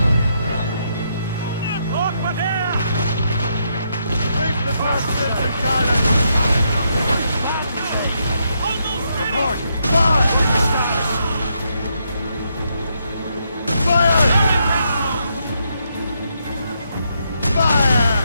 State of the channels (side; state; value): both; inverted; correlation -0.78